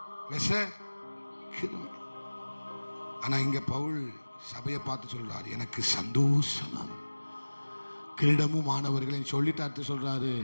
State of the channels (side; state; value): both; inverted; correlation -1.00